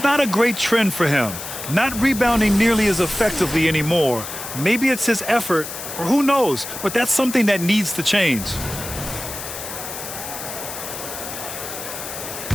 not a great trend for him. Not rebounding nearly as effectively anymore. Maybe it's his effort, or who knows, but that's something that needs to change.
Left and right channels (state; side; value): noise; left; hiss, 9 dB below the sound